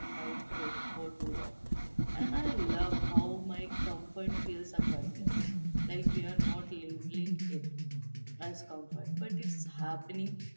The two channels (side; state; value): both; inverted; correlation -1.00